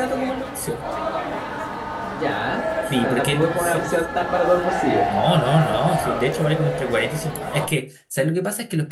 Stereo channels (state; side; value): identical; both; correlation 1.00